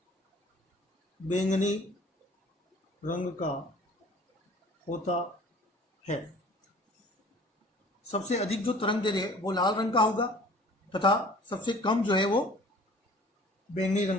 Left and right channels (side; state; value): both; normal; correlation 0.49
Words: बैंगनी रंग का होता है। सबसे अधिक जो तरंग दैर्घ्य है वो लाल रंग का होगा तथा सबसे कम जो है वो बैंगनी